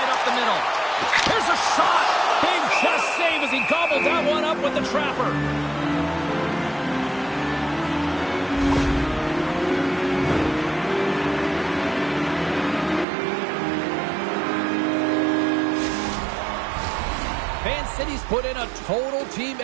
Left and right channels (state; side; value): drops out; left; at 13.1 s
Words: up the middle. Here's a shot. Big chest save as he gobbled that one up with the trapper. Van City's put in a total team